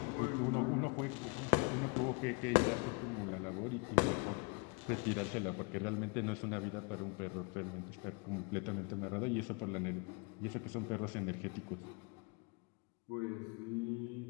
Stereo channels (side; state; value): right; quieter; 27.7 dB